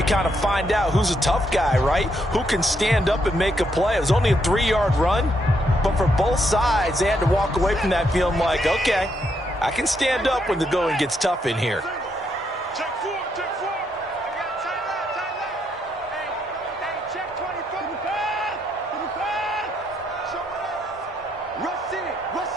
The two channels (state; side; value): normal; both; correlation 0.76